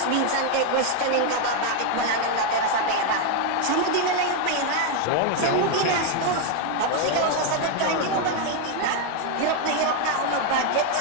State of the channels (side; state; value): both; different; correlation 0.01